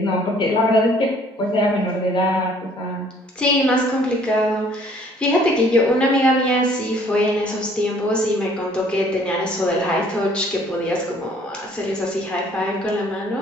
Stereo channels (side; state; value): both; normal; correlation 0.58